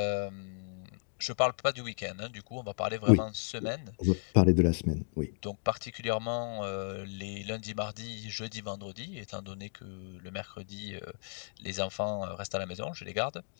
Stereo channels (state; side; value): silent; right; 55 dB below the other